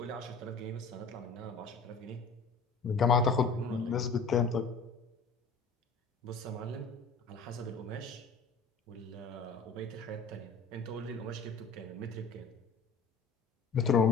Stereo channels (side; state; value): right; quieter; 4.3 dB